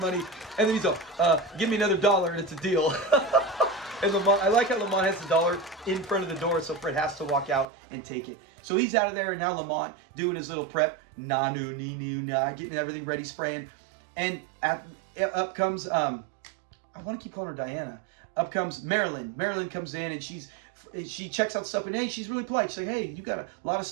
and then he's all, give me another $1 and it's a deal. And Lamont, I like how Lamont has the $1 in front of the door, so Fred has to walk out and take it. So he's out of there, and now Lamont doing his little prep, getting everything ready, spraying. And up comes, I want to keep calling her Diana. Up comes Marilyn. Marilyn comes in, and she checks out stuff, and hey, she's really polite. She's like, hey, you got a lot of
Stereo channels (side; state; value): left; drops out; at 7.7 s